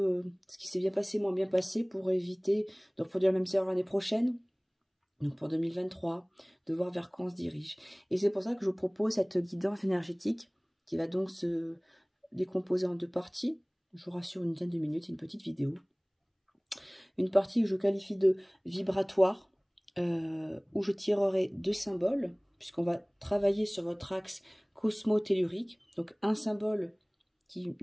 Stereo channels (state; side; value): identical; both; correlation 1.00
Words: ce qui s'est bien passé, moins bien passé pour éviter de reproduire la même erreur l'année prochaine. Donc pour 2023, de voir vers quoi on se dirige. Et c'est pour ça que je vous propose cette guidance énergétique qui va donc se décomposer en deux parties. Je vous rassure, une dizaine de minutes, une petite vidéo. Une partie que je qualifie de vibratoire, où je tirerai deux symboles, puisqu'on va travailler sur votre axe cosmo-tellurique. Donc un symbole qui